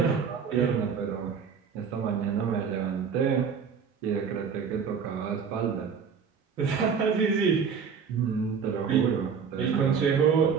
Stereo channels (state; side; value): quieter; left; 6.4 dB